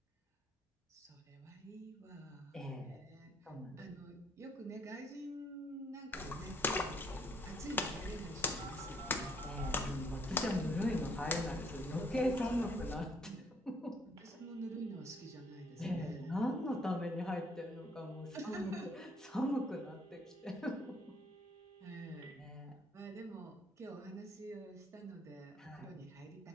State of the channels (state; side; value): normal; both; correlation 0.65